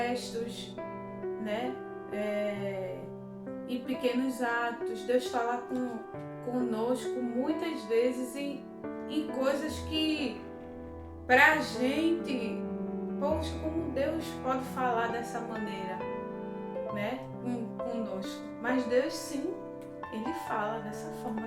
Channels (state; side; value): identical; both; correlation 1.00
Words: né? Em pequenos atos. Deus fala conosco muitas vezes em coisas que, pra gente, poxa, como Deus pode falar dessa maneira, né? Conosco. Mas Deus, sim, Ele fala dessa forma